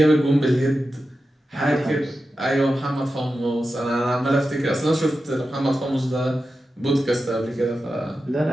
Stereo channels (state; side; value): normal; both; correlation 0.92